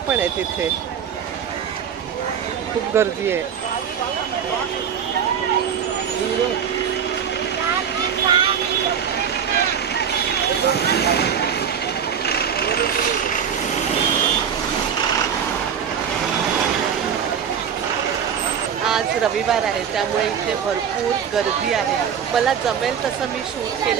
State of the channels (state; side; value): quieter; left; 7.9 dB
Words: आहेत इथे. खूप गर्दी आहे. आज रविवार आहे, त्यामुळे इथे भरपूर गर्दी आहे. मला जमेल तसं मी शूट